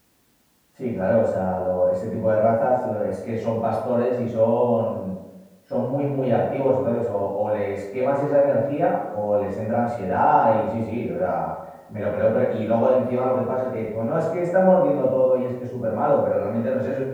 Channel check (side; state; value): both; identical; correlation 1.00